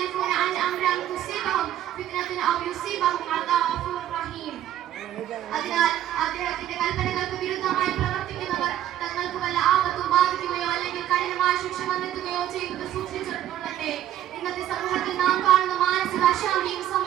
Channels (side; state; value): left; quieter; 12.0 dB